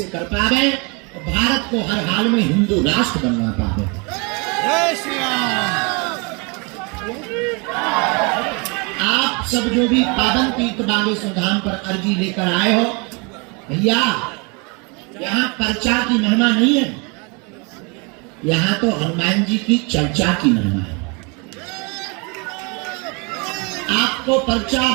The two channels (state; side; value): quieter; left; 31.4 dB